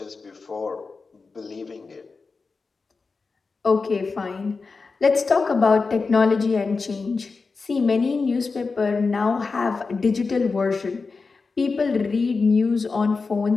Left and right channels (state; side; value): quieter; right; 4.4 dB